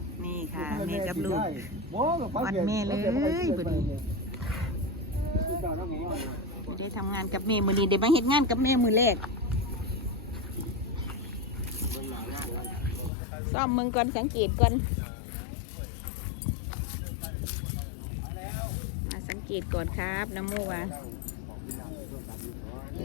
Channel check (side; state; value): right; drops out; at 13.1 s